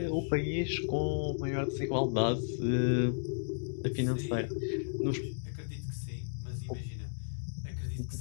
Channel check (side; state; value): right; silent; digital silence